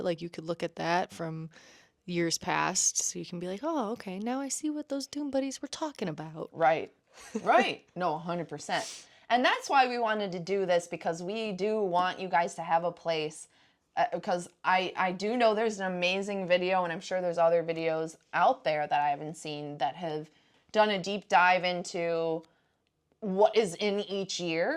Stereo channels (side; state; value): both; identical; correlation 1.00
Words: Like you could look at that from years past, so you can be like, oh, okay, now I see what those Doom Buddies were talking about. Right. No, 100%. And that's why we wanted to do this, because we do want you guys to have a place, because I do know there's an amazing video, and I'm sure there's other videos out there that I haven't seen that have done a deep dive into what is in each